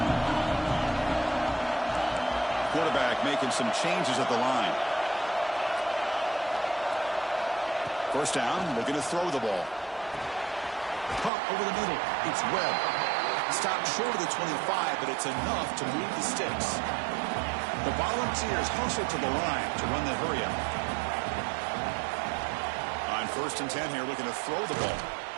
Quarterback making some changes at the line. First down, looking to throw the ball. Pump over the middle. It's Webb. Stopped short of the 25, but it's enough to move the sticks. The Volunteers hustle to the line to run the hurry-up. On 1st and 10 here, looking to throw the ball.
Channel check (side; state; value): left; drops out; at 11.3 s